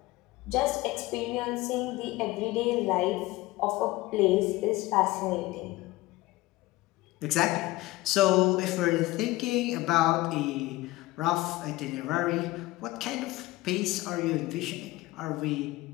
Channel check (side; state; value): right; quieter; 18.6 dB